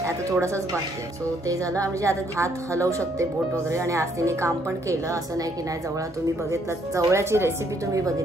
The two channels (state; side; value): normal; both; correlation 0.69